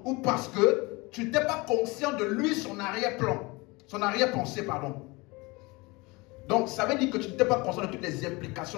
ou parce que tu n'étais pas conscient de lui, son arrière-plan, son arrière-pensée, pardon. Donc ça veut dire que tu n'étais pas conscient de toutes les implications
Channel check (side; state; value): right; quieter; 24.9 dB